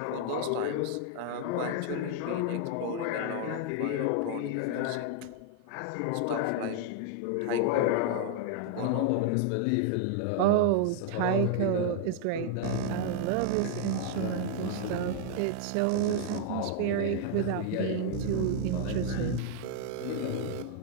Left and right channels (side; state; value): both; different; correlation 0.00